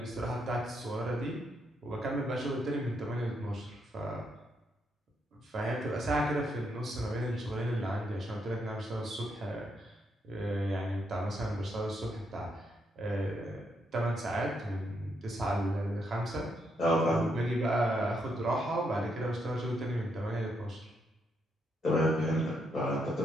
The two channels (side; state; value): both; normal; correlation 0.78